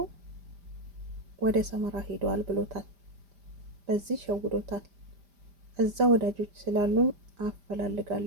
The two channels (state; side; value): late; left; 5.0 ms